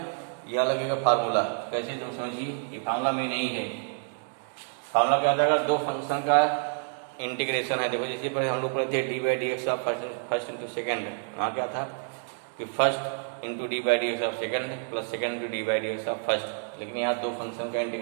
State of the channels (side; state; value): left; silent; 57 dB below the other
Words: यह लगेगा फार्मूला। कैसे? तुम समझिए, ये फार्मूला में नहीं है। फार्मूला क्या होता है? दो फंक्शन का इंटीग्रेशन है। देखो जैसे पहले हम लोग पढ़े थे D by D X of first into second. वहाँ क्या था कि first into D by D X of second plus second into D by D X of first. लेकिन यहाँ दो फंक्शन का